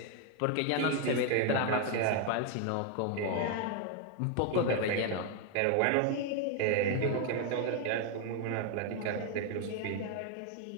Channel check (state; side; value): different; both; correlation 0.01